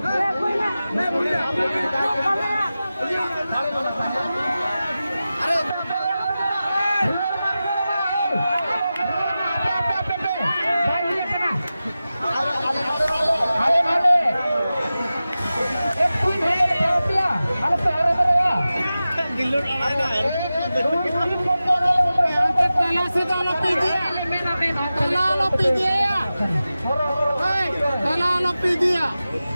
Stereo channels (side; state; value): both; inverted; correlation -0.94